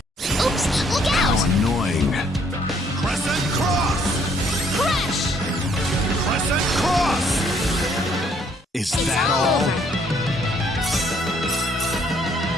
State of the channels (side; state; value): both; normal; correlation 0.65